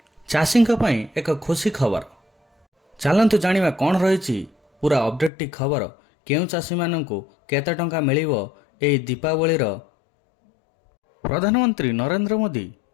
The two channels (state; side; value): drops out; right; at 5.3 s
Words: चाषी एक खुशी खबर। चलतु जानिबा कौन रही पूरा अपडेट टी खबर। केउ चाषी माननकु केते टंका मिलिबो एई दीपावली रो। प्रधानमंत्री नरेंद्र मोदी